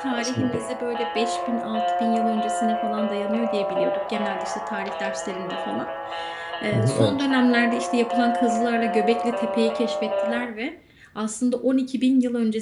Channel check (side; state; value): both; identical; correlation 1.00